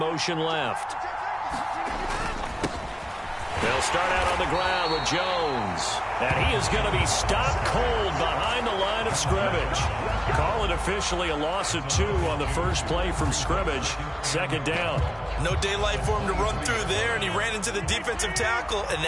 left. They'll start out on the ground with Jones. And he is going to be stopped cold behind the line of scrimmage. Call it officially a loss of 2 on the first play from scrimmage. Second down. No daylight for him to run through there, and he ran into the defensive tackle, and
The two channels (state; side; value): identical; both; correlation 1.00